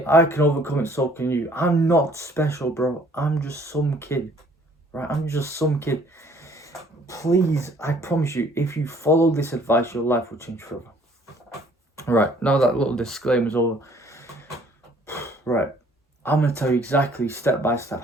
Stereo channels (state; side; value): normal; both; correlation 0.58